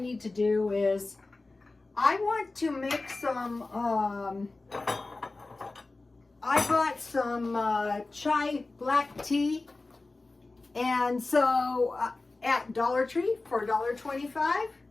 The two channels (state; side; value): quieter; right; 3.3 dB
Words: to do is I want to make some, I bought some chai black tea, and so at Dollar Tree for $1.25.